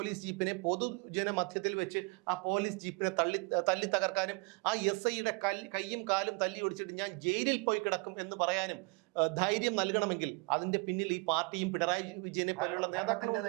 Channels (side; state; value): left; quieter; 29.2 dB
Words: ജീപ്പിനെ പൊതുജന മധ്യത്തിൽ വെച്ച് ആ പോലീസ് ജീപ്പിനെ തല്ലി തകർക്കാനും ആ SIയുടെ കൈയും കാലും തല്ലി ഒടിച്ചിട്ട് ഞാൻ ജയിലിൽ പോയി കിടക്കും എന്ന് പറയാനും ധൈര്യം നൽകണമെങ്കിൽ അതിന്റെ പിന്നിൽ ഈ പാർട്ടിയും പിണറായി വിജയനെ പോലുള്ള ഭരണത്തിന്റെ